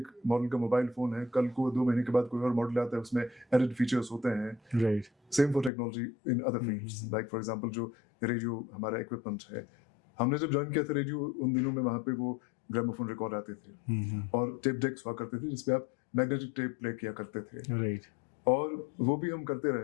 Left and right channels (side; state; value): right; drops out; at 5.7 s